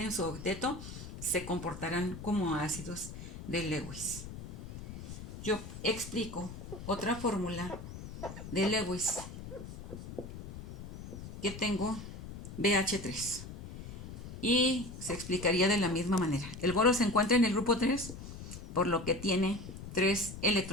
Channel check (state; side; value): noise; left; rumble, 11 dB below the sound